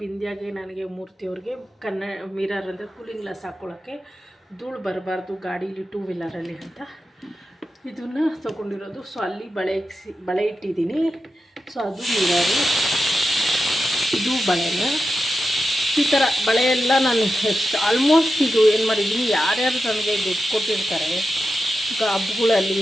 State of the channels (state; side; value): normal; both; correlation 0.90